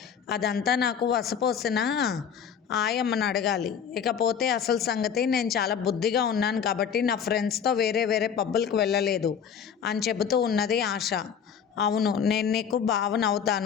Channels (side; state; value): right; quieter; 7.5 dB